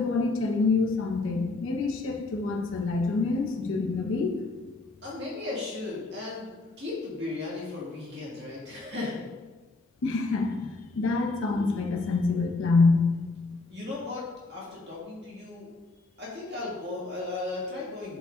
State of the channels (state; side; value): quieter; right; 3.4 dB